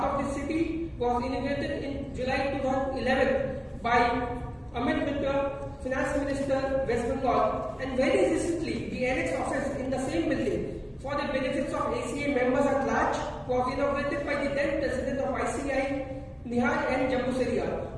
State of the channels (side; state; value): both; identical; correlation 1.00